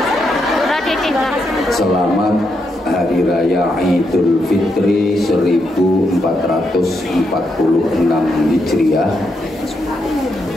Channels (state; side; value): normal; both; correlation 0.81